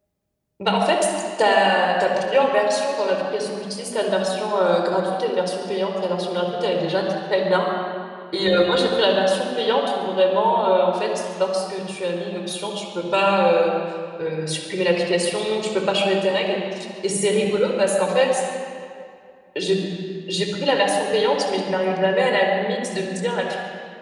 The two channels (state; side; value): identical; both; correlation 1.00